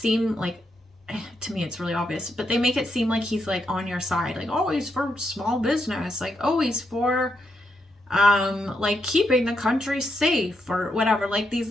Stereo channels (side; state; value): both; normal; correlation 0.81